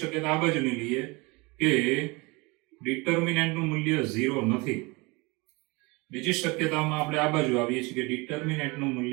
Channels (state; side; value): quieter; left; 25.9 dB